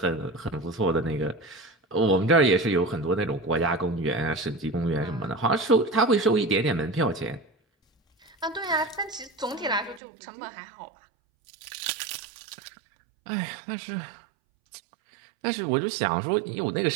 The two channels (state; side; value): drops out; left; at 10.0 s